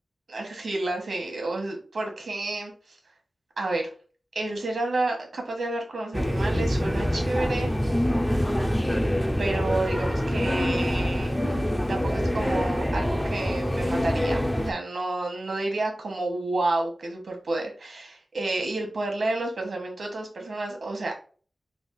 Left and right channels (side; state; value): both; normal; correlation 0.95